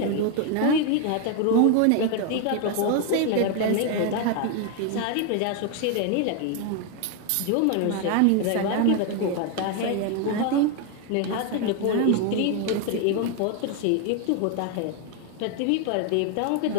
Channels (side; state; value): both; different; correlation 0.01